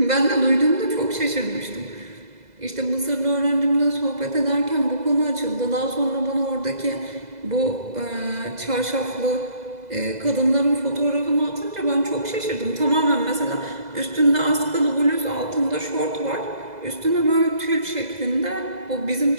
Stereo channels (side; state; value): left; late; 2.0 ms